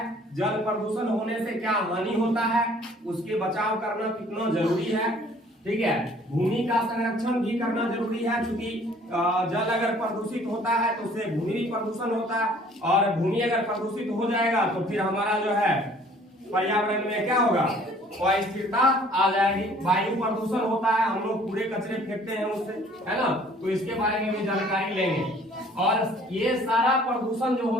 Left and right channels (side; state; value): both; normal; correlation 0.55